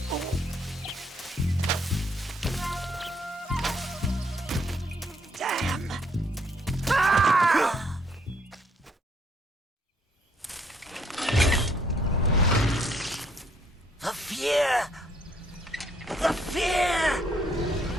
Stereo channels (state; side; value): normal; both; correlation 0.68